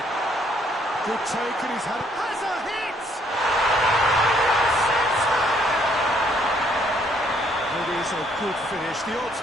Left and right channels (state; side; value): normal; both; correlation 0.67